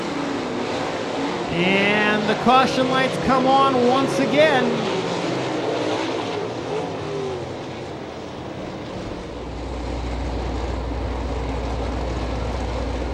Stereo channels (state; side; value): identical; both; correlation 1.00